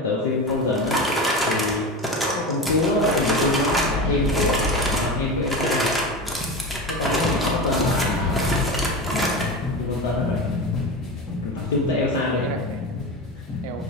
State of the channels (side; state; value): both; normal; correlation 0.25